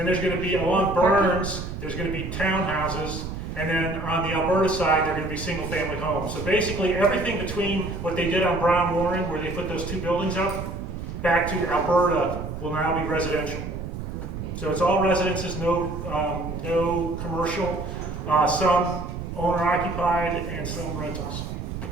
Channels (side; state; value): right; noise; rumble, 7 dB below the sound